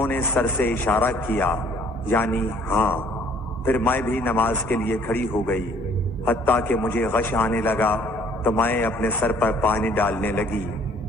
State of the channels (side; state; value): both; normal; correlation 0.58